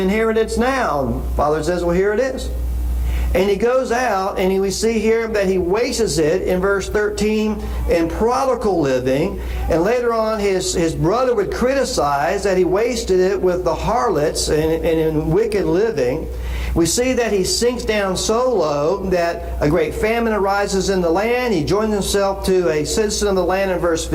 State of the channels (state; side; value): identical; both; correlation 1.00